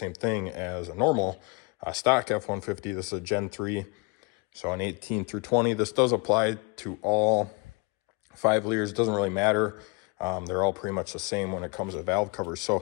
thing as a normal stock F-150. This is a Gen 3, so an 18 through 20. This does apply to all 5 liters. It doesn't really matter. They're all pretty much the same when it comes to valve covers. So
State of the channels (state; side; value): quieter; right; 29.4 dB